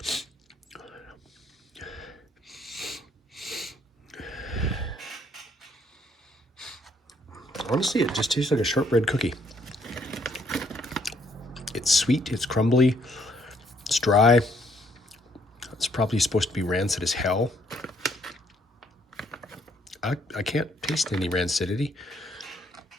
honestly, it just tastes like a shortbread cookie. It's sweet, it's crumbly, it's dry. It's probably supposed to be rancid as hell. I can't taste any rancidity.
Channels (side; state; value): both; normal; correlation 0.67